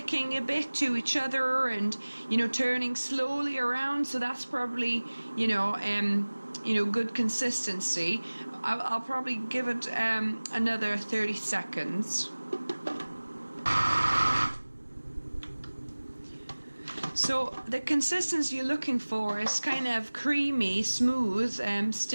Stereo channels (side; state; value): both; inverted; correlation -1.00